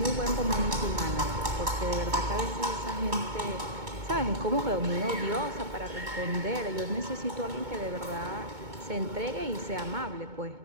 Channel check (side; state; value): left; late; 2.2 ms